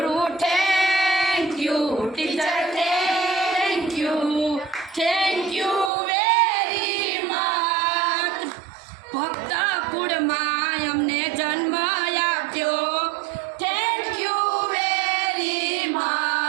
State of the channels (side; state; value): left; drops out; at 5.9 s